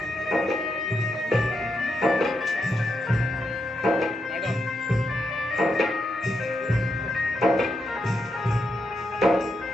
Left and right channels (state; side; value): normal; both; correlation 0.83